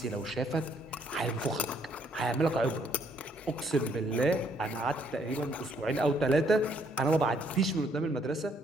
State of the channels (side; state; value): both; normal; correlation 0.68